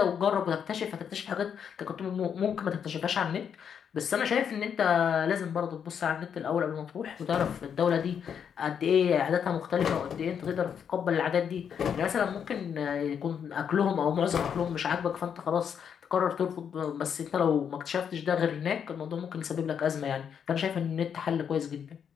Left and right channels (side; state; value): right; quieter; 7.7 dB